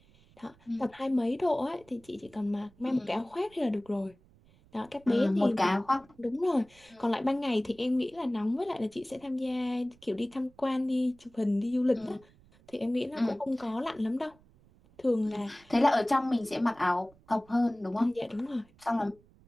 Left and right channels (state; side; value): noise; right; rumble, 28 dB below the sound